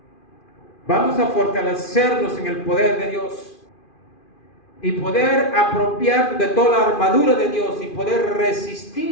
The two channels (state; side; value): late; right; 2.5 ms